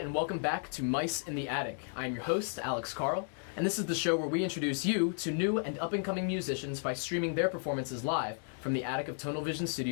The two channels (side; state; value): right; silent; 55 dB below the other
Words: welcome back to Mice in the Attic. I am your host, Alex Carle, and this is the show where we introduce you to new and up-and-coming musicians by streaming their performances live from the attic of Tonal Vision